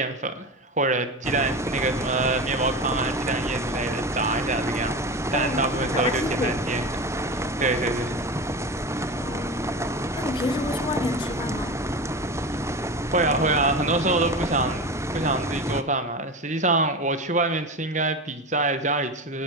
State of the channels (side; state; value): both; normal; correlation 0.25